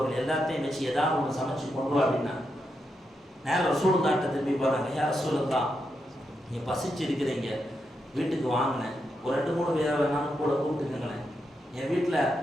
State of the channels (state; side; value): normal; both; correlation 0.84